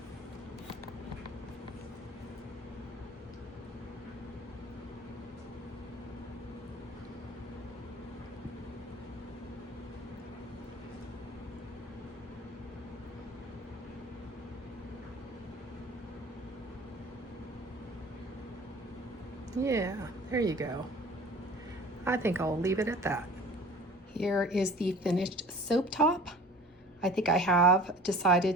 Yeah, there you go. I think I'll leave it at that. Here is the finished soap top. I think I have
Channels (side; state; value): both; normal; correlation 0.44